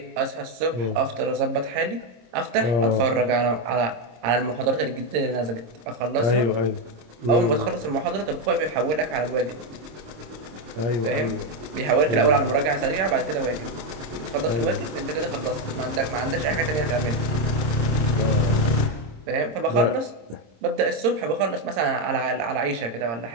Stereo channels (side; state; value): left; late; 26 ms